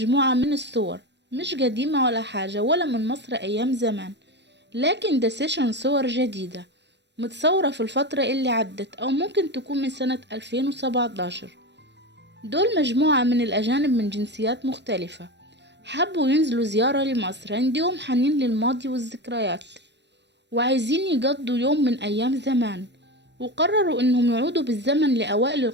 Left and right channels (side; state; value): left; late; 0.51 ms